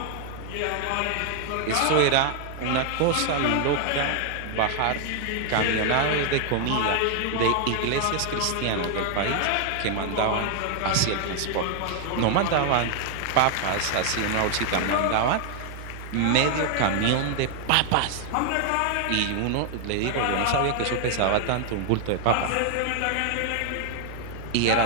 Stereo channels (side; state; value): both; different; correlation 0.00